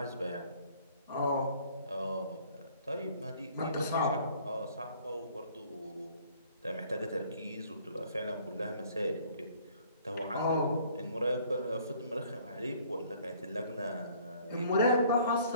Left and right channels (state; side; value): inverted; both; correlation -0.57